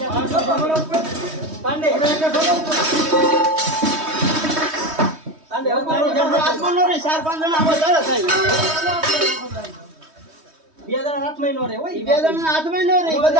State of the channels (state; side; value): late; left; 3.2 ms